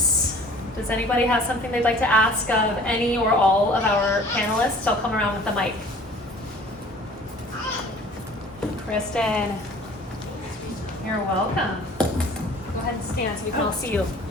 Does anybody have something they'd like to ask of any or all of our panelists? I'll come around with the mic. Kristen, you're welcome. Go ahead and stand so we can all see you.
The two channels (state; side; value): normal; both; correlation 0.49